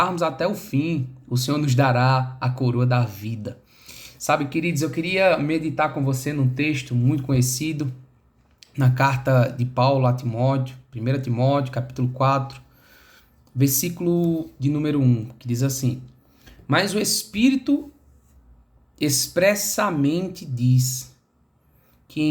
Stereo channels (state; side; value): identical; both; correlation 1.00